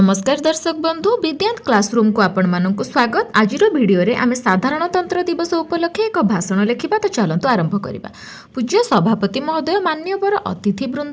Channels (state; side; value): identical; both; correlation 1.00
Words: दर्शक बंधु विज्ञान क्लासरूम को आपण मानक स्वागत। आज भिडियो रे आमे साधारणतंत्र दिवस उपलक्षे एक भाषण लिखिबा। तो चलंतु आरंभ करिबा। पूज्य सभापति महोदय, मान्यवर अतिथि